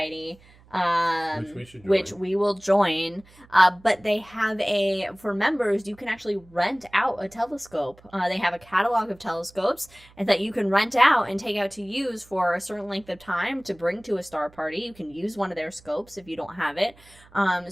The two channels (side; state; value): right; noise; hum, 26 dB below the sound